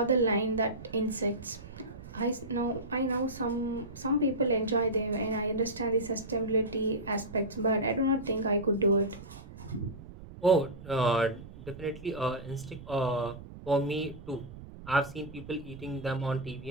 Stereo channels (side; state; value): right; noise; rumble, 15 dB below the sound